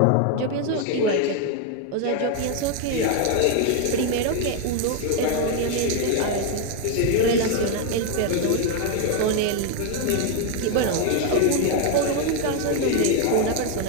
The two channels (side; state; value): both; different; correlation 0.01